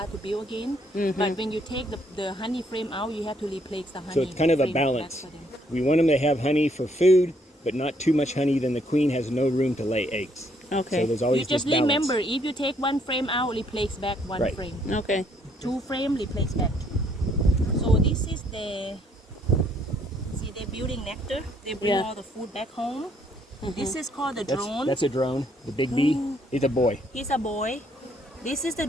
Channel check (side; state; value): both; normal; correlation 0.68